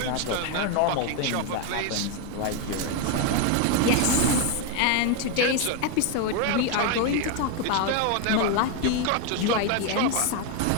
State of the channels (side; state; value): both; different; correlation 0.01